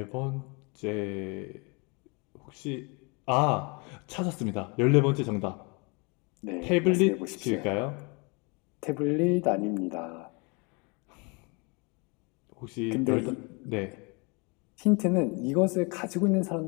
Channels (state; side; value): quieter; right; 30.8 dB